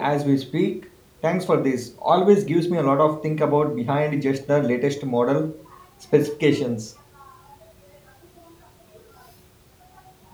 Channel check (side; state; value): both; identical; correlation 1.00